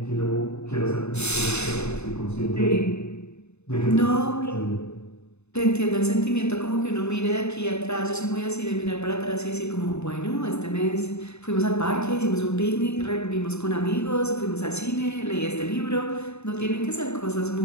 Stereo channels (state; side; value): late; right; 0.81 ms